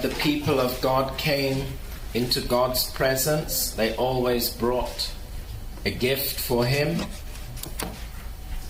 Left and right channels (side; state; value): both; identical; correlation 1.00